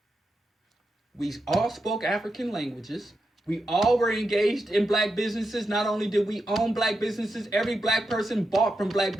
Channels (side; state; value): both; normal; correlation 0.87